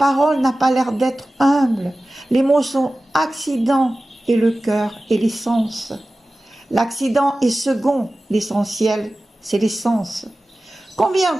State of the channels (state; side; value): normal; both; correlation 0.96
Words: n'a pas l'air d'être humble, les mots sont accidents et le cœur est l'essence. L'accident est second, l'essentiel c'est l'essence. Combien